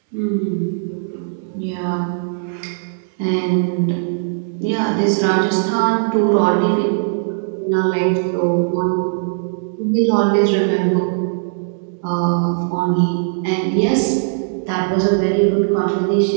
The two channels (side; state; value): left; silent; digital silence